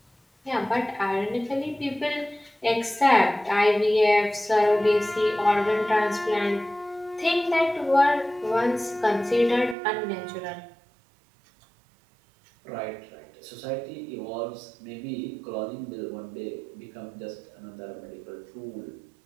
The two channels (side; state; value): left; drops out; at 9.8 s